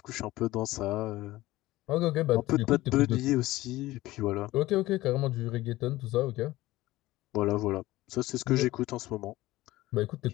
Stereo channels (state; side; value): quieter; right; 17.6 dB